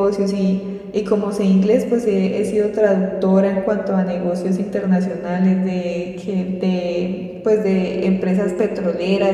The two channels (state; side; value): identical; both; correlation 1.00